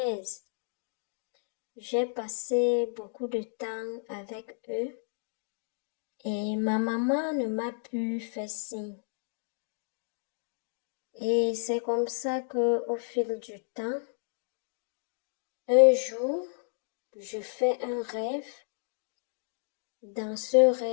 J'ai passé beaucoup de temps avec eux et ma maman ne m'a plus fait signe. Et c'est comme ça que, au fil du temps, un jour, je fais un rêve. Dans ce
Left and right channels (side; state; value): right; silent; digital silence